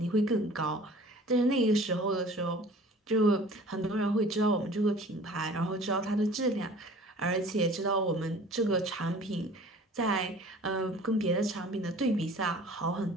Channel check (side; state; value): both; normal; correlation 0.47